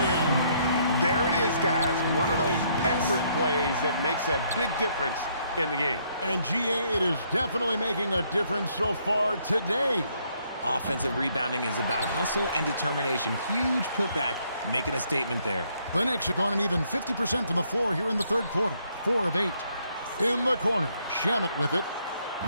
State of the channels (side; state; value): both; inverted; correlation -0.70